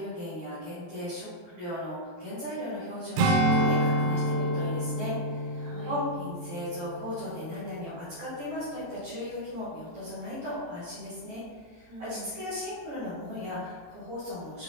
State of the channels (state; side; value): late; left; 18 ms